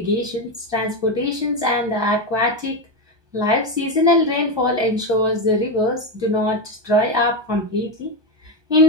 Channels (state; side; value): late; left; 1.2 ms